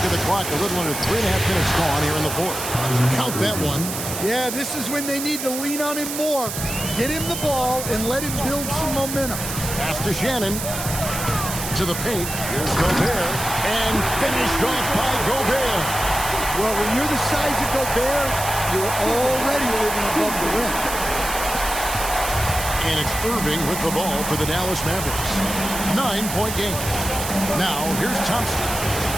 at the clock, a little under 3.5 minutes gone here in the fourth. Count that one. Yeah, this is when they need to lean on him more. Get him the ball and let him build some momentum. Pass to Shannon. To the paint. Here's Gobert. And finished off by Gobert. Well, when you're the size of Gobert, you're already living above the rim. And it's Irving with the ball for the Dallas Mavericks. 9-point game. Now, here's Thompson.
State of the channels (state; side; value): noise; right; hiss, 6 dB below the sound